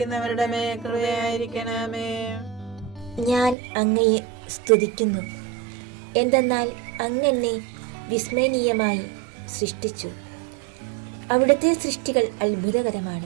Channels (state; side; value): drops out; left; at 3.6 s